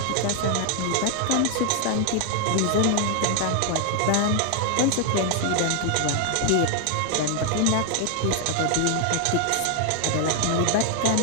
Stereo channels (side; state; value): both; different; correlation 0.00